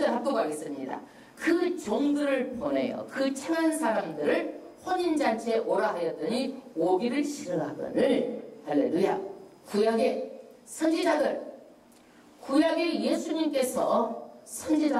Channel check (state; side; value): identical; both; correlation 1.00